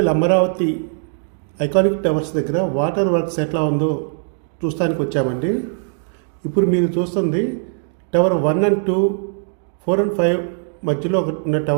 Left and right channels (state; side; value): silent; left; digital silence